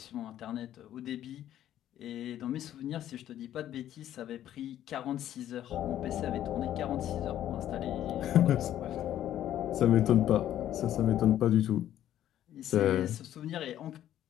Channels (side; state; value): right; quieter; 11.8 dB